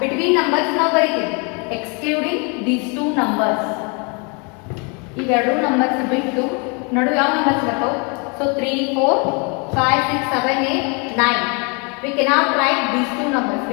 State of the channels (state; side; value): quieter; right; 33.2 dB